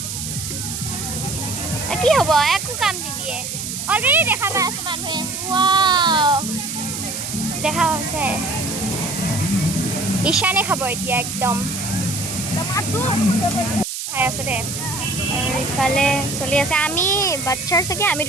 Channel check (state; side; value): noise; right; hiss, 5 dB below the sound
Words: কি হ'ব একো কাম নিদিয়ে অলৰেডি দেখা পাই আছে মানুহে ৱাও দেখা হৈছে ঈশানে খাব এতিয়া একদম খাই আছে দে আৰু ইফালে চলি আছে আমি বাচ্চাৰ চাগে আমি